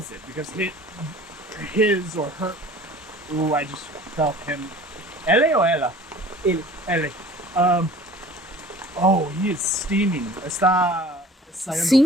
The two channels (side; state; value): both; normal; correlation 0.46